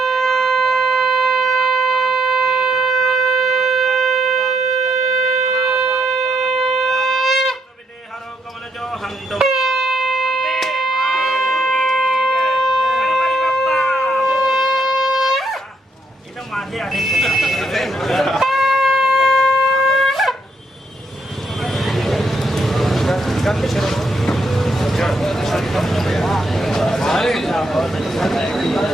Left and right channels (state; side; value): normal; both; correlation 0.75